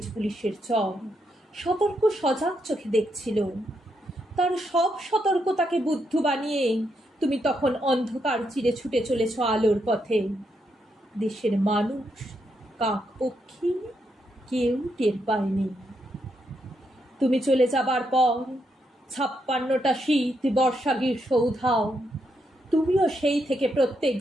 পুলিশের চর সতর্ক সজাগ চোখে দেখছিল। তার সব সতর্কতাকে বুদ্ধ বানিয়ে তুমি তখন অন্ধকার চিরে ছুটে চলেছ আলোর পথে। দেশের মানুষ, কাক পক্ষী কেউ টের পায়নি। তুমি চলে যাবার পর ৫৬টা শীত, বর্ষা, গ্রীষ্ম উধাও। তুমিও সেই থেকে প্রত্যেক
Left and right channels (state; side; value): normal; both; correlation 0.80